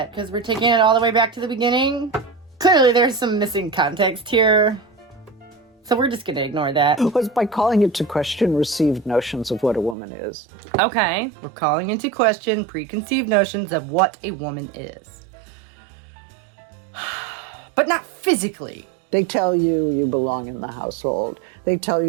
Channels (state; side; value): drops out; left; at 10.0 s